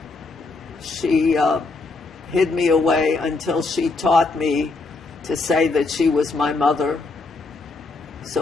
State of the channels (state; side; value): quieter; right; 3.7 dB